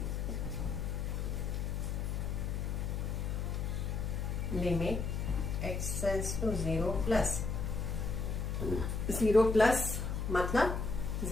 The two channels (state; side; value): noise; left; hum, 1 dB below the sound